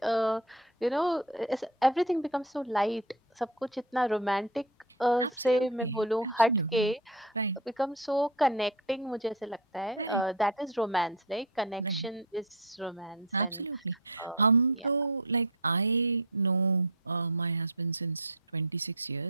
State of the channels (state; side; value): normal; both; correlation 0.18